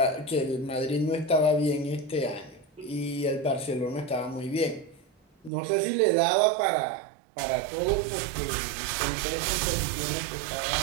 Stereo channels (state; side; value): drops out; left; at 5.5 s